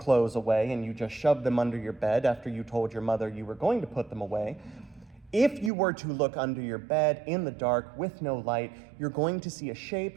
away and you just shoved them under your bed after you told your mother you were going to put them away, if you were to look under your bed in the dark with no light, you're going to see a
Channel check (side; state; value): left; drops out; at 5.7 s